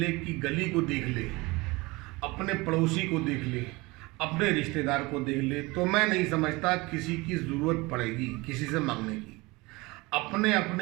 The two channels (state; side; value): quieter; left; 23.4 dB